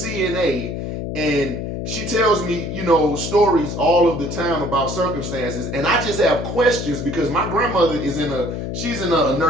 and she tells me, stories all of the time about circumstances, and I just have questions because my grandmother she's in a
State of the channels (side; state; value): left; noise; hum, 5 dB below the sound